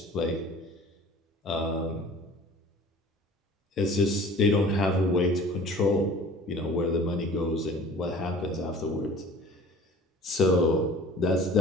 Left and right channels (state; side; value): normal; both; correlation 0.46